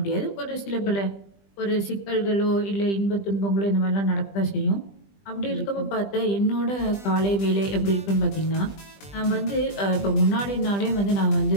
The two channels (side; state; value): right; late; 20 ms